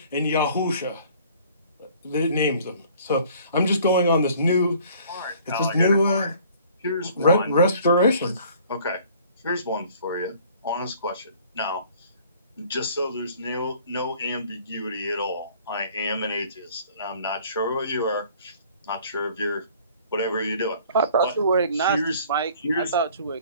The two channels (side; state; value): both; inverted; correlation -0.54